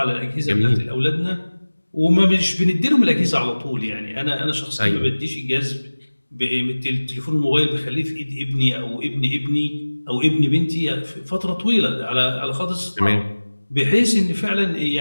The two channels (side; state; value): both; inverted; correlation -1.00